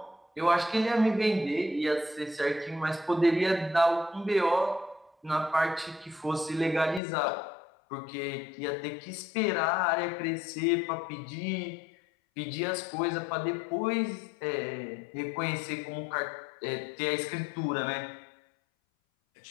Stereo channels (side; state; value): right; drops out; at 7.0 s